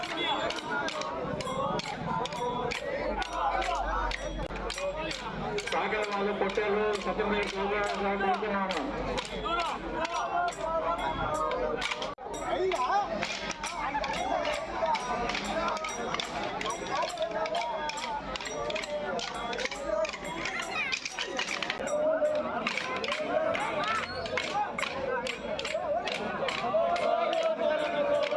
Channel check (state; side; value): identical; both; correlation 1.00